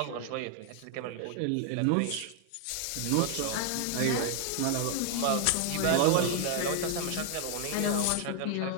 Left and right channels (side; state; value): both; different; correlation 0.00